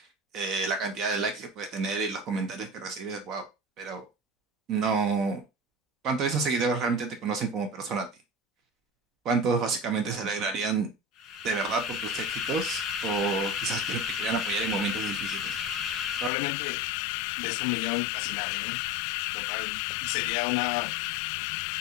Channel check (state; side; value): drops out; right; at 16.3 s